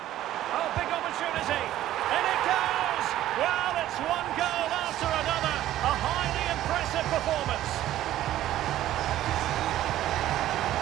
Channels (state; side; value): quieter; left; 13.4 dB